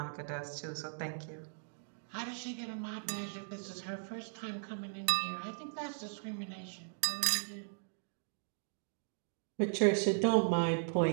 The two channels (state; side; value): silent; left; digital silence